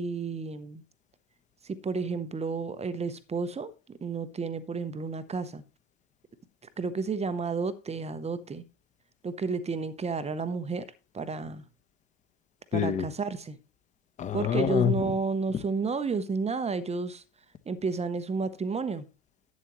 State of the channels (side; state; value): both; normal; correlation 0.53